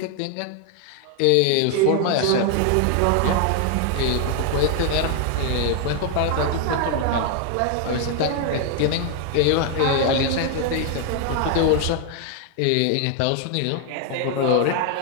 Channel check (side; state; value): both; different; correlation 0.01